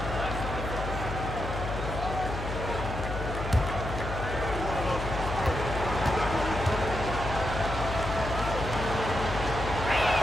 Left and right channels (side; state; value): left; noise; hum, 6 dB below the sound